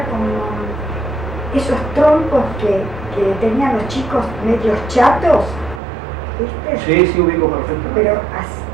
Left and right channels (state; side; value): drops out; left; at 5.8 s